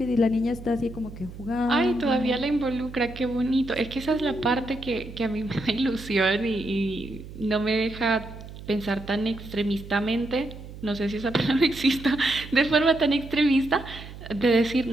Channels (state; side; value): noise; right; hum, 14 dB below the sound